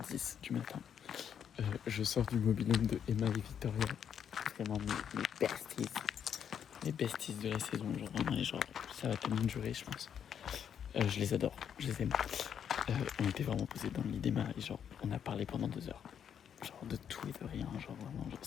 du matin. Je sors du mobil-home de Emma et Victoria. Vraiment mes besties. Mes besties de la saison, genre vraiment, et genre ça va tellement durer, je pense. Je les adore, je les aime. On était vraiment posés dans le lit d'Emma et genre on a parlé pendant 2 heures. Genre de tout et de rien, genre vraiment, genre,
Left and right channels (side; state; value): right; quieter; 8.4 dB